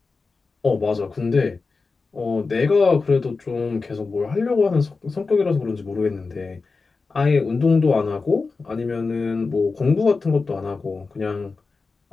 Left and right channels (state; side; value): quieter; right; 4.2 dB